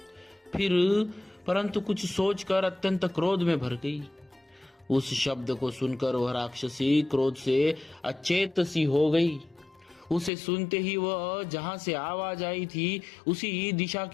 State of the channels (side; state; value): right; drops out; at 10.3 s